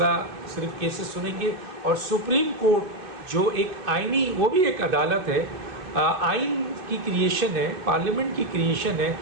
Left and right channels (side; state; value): left; late; 2.6 ms